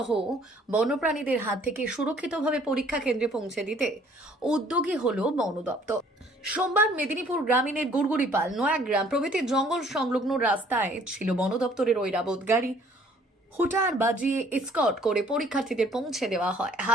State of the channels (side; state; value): both; normal; correlation 0.58